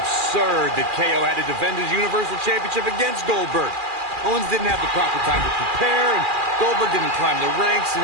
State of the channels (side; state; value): left; late; 2.4 ms